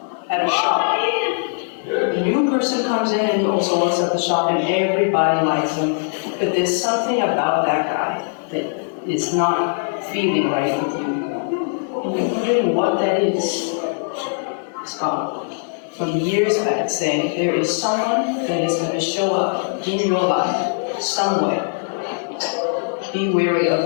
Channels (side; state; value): right; silent; 65 dB below the other